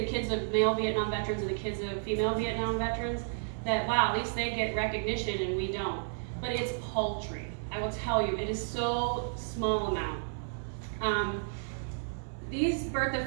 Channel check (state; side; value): silent; left; 56 dB below the other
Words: kids of male Vietnam veterans and the kids of female Vietnam veterans, that wow, at least they get recognition and we don't. But it's paltry. I will tell you, it is so small amount. These birth